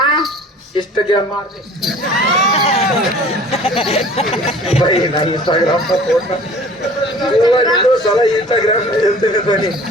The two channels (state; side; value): normal; both; correlation 0.47